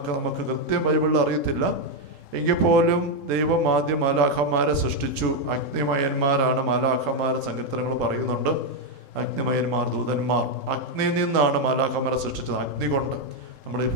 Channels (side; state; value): right; late; 3.7 ms